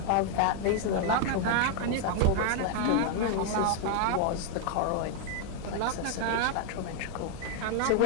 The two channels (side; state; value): both; different; correlation 0.00